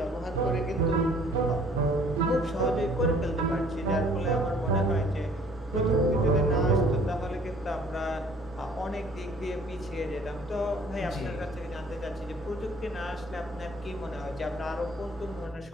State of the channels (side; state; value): both; normal; correlation 0.56